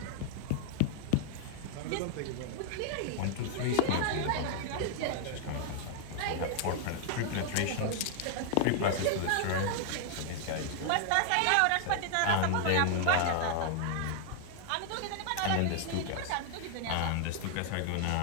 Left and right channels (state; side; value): different; both; correlation 0.00